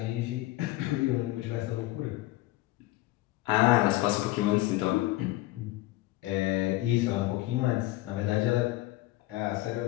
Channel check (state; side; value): quieter; right; 18.1 dB